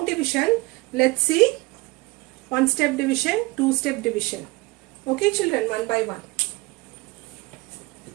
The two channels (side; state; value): left; quieter; 23.2 dB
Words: division, let's see one-step division, two-step division. Okay, children, one by one.